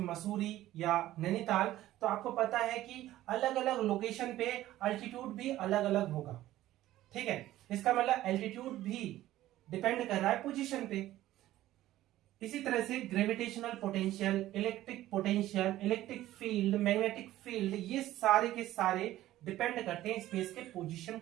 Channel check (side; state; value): left; quieter; 14.7 dB